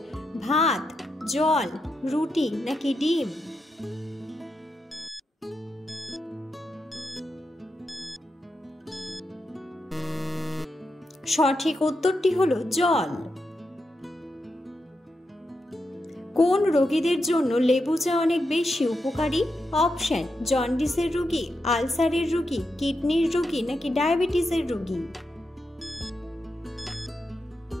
ভাত, জল, রুটি নাকি ডিম? সঠিক উত্তরটি হলো জল। কোন রোগীদের জন্য লেবু চা অনেক বেশি উপকারী? অপশন: জন্ডিসের রোগী, আলসারের রোগী, কিডনির রোগী নাকি ডায়াবেটিসের রোগী?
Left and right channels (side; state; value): both; normal; correlation 0.86